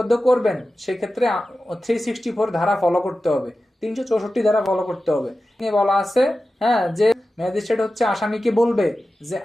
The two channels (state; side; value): normal; both; correlation 0.94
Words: করবেন সেক্ষেত্রে 364 ধারা ফলো করতে হবে, 364 ধারা ফলো করতে হবে। বলা আছে যে ম্যাজিস্ট্রেট হচ্ছে আসামিকে বলবে যে